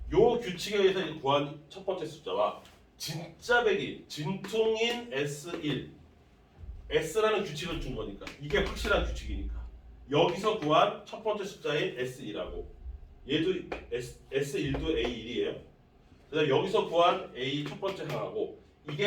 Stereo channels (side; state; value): both; identical; correlation 1.00